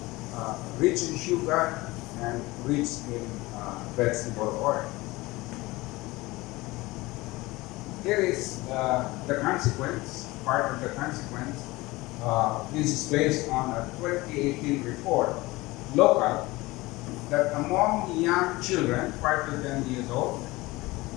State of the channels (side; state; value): right; quieter; 21.0 dB